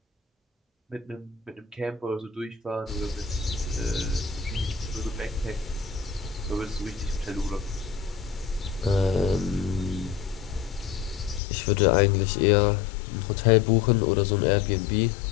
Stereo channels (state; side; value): drops out; right; at 11.4 s